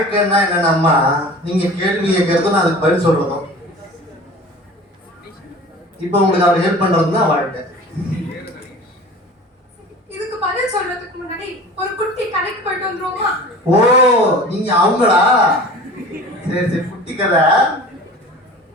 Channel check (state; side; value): normal; both; correlation 0.41